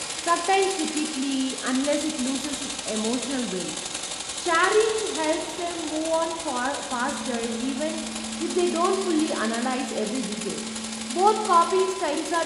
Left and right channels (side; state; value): both; identical; correlation 1.00